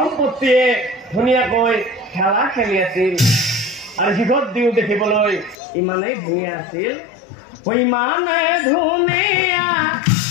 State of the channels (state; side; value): drops out; right; at 5.6 s